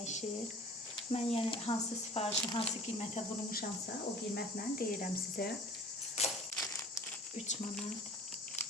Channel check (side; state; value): both; normal; correlation 0.46